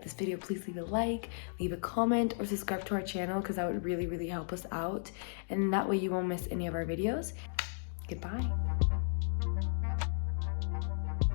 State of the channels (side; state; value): right; silent; digital silence